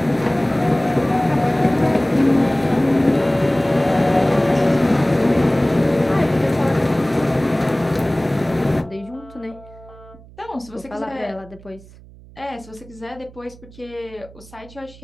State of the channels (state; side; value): noise; right; hum, 22 dB below the sound